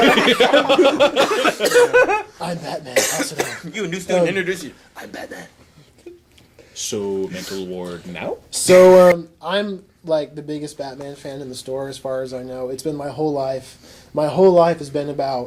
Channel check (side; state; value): both; identical; correlation 1.00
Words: I'm Batman. Pass it on. You, a new student, introduce you. I'm Batman. So, mental ward now? So I'm like the biggest Batman fan in the store, as far as I know. It's been my whole life. My whole life has been